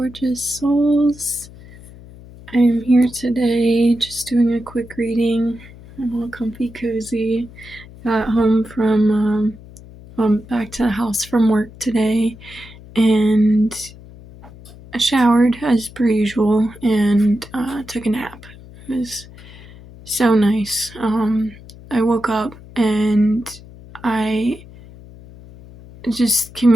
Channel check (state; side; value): noise; left; hum, 19 dB below the sound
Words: souls. I am here today just doing a quick reading. I'm all comfy, cozy. Got home from back to the house from work today, and I showered as per usual and took a nap. It was so nice. I woke up and I just